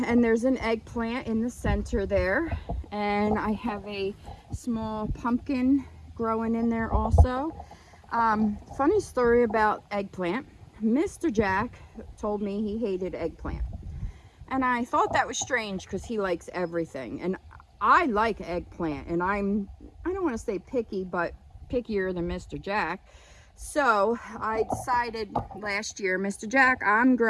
there's an eggplant in the center there, and I have a small pumpkin growing in there also. Funny story about eggplant. Mr. Jack told me he hated eggplant, and I thought that was strange because he likes everything, and I like eggplant, and I don't want to say picky, but pickier than Mr. Jack. So I decided last year, Mr. Jack, I'm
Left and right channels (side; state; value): both; identical; correlation 1.00